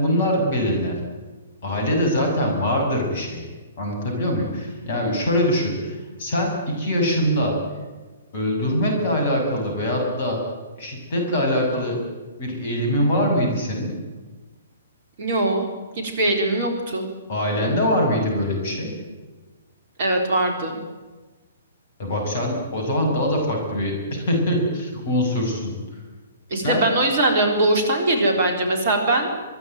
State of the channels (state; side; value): inverted; both; correlation -0.44